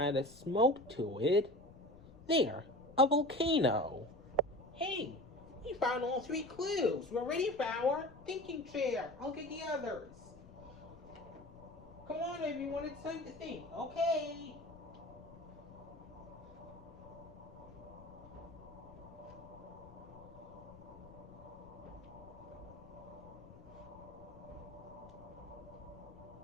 a smoke to it. There, a volcano. Hey, we found all three clues. We're ready for our thinking chair. I'll get the others. Come on, everyone, it's time to think. Okay.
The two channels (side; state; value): left; noise; rumble, 19 dB below the sound